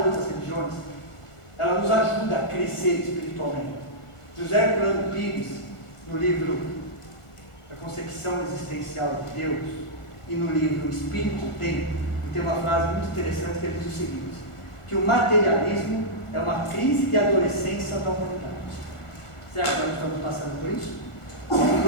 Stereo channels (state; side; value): late; right; 1.5 ms